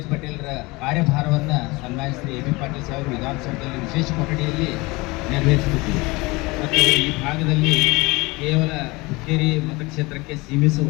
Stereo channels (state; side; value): quieter; right; 23.8 dB